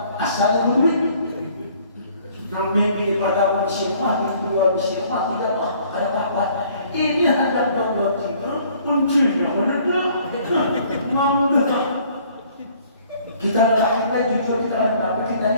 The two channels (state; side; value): inverted; both; correlation -0.58